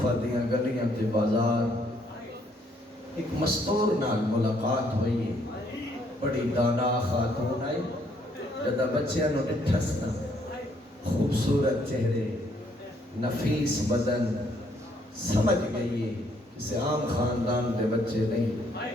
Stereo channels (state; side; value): normal; both; correlation 0.68